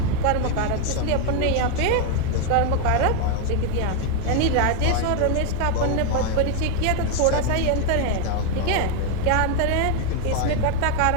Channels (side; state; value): both; different; correlation 0.01